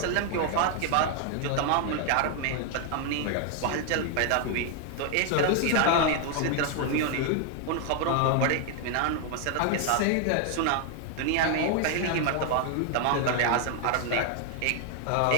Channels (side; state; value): both; different; correlation 0.00